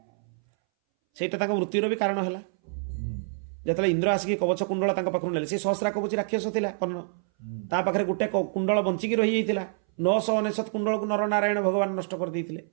सेटा तांको मृत्युर भी कारण हैला। जतले इंद्र आसिक कवच कुंडल तांको पाखरु नेले, से सहस्रा कवच राक्षस थिला कर्ण, ता पाखरे गुटे कुंडल बंचिकी रही जाइतिला। 999 कुंडल को नर नारायण भगवान नष्ट कर देइतिले।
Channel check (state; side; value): silent; left; 60 dB below the other